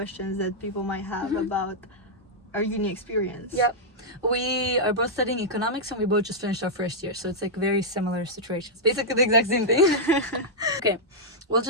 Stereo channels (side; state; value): both; normal; correlation -0.07